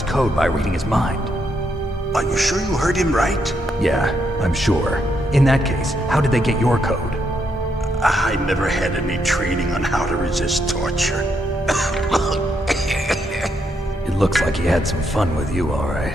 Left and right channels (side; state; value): both; normal; correlation 0.78